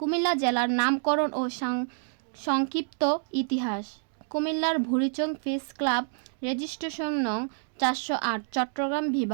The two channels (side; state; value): left; silent; digital silence